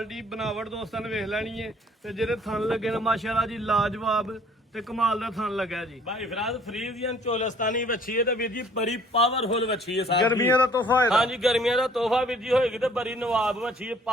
ਬਣਾਵਟ ਦੋਸਤਾਂ ਨੇ ਵੇਖ ਲੈਣੀ ਏ। ਤੇ ਜਿਹੜੇ ਥਣ ਲੱਗੇ ਨੇ ਮਾਸ਼ਾਅੱਲਾ ਜੀ ਲਾਜਵਾਬ ਤੇ ਕਮਾਲ ਦਾ ਥਣ ਲੱਗਾ ਜੀ। ਭਾਈ ਫਰਾਜ਼ ਫਰੀਜ਼ੀਅਨ ਚੋਲਸਤਾਨੀ ਵੱਛੀ ਹੈ ਤੇ ਵੀਰ ਜੀ ਬੜੀ ਪਾਵਰਫੁਲ ਵੱਛੀ ਹੈ ਸਾਹਿਬ। ਗਰਮੀਆਂ ਦਾ ਤੋਹਫਾ ਹੈ। ਹਾਂਜੀ ਗਰਮੀਆਂ ਦਾ ਤੋਹਫਾ ਵੀਰ ਜੀ ਹੋਏਗੀ ਤੇ ਬੜੀ ਨਵਾਬ ਵੱਛੀ ਹੈ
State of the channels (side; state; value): both; normal; correlation 0.57